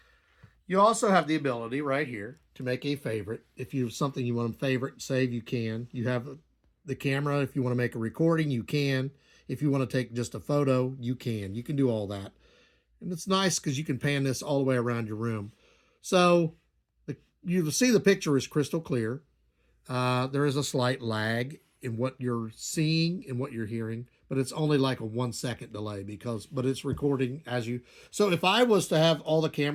You also have the ability right here to make a favorite. If you have something you want to favorite, save, you can. You have the camera. If you want to make a recording, you can. If you want to take just a photo, you can. You can do all that. And it's nice because you can pan this all the way around your room. So you see the picture is crystal clear. There is a slight lag in what you're seeing and what you're hearing, but it's only like a 1 second delay but it's recording as you. So if I was to have all the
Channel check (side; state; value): both; identical; correlation 1.00